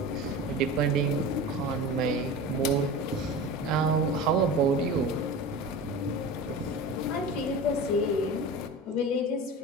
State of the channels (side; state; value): both; normal; correlation 0.32